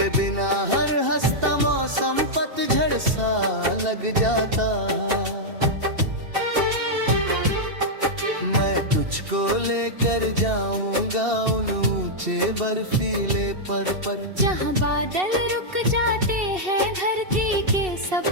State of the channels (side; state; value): left; late; 2.7 ms